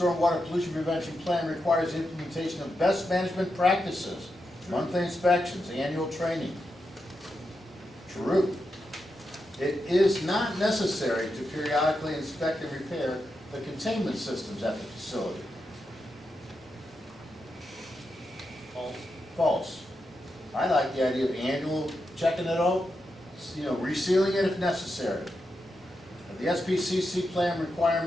Pollution Prevention Plan requires the implementation of best management practices, monthly inspections, annual training. True. It is not necessary to periodically inspect and repair the containment systems at the facility. False. False. I like the idea of annual checking it out, resealing it if necessary. The SPCC plan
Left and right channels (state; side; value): normal; both; correlation 0.87